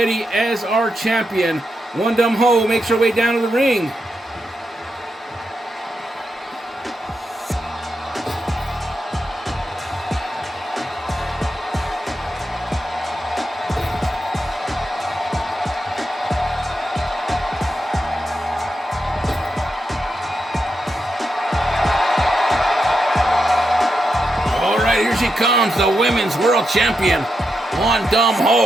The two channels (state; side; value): normal; both; correlation 0.85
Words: as our champion. One Dumb Ho makes her way down to the ring. All right, here she comes, the women's world champion, One Dumb